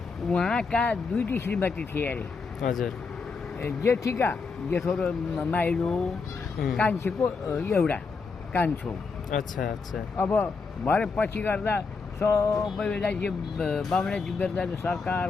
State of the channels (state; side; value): quieter; right; 4.6 dB